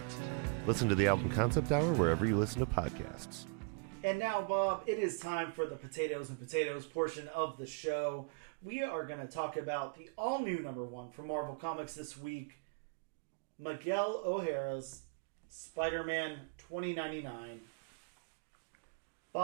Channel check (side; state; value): left; quieter; 34.6 dB